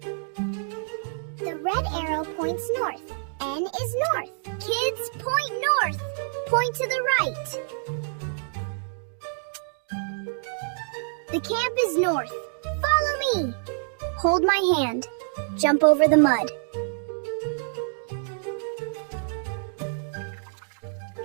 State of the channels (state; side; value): silent; left; digital silence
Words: The red arrow points north. N is north. Kids, point north. Point to the right. The camp is north. Follow me. Hold my hand. Jump over the mud.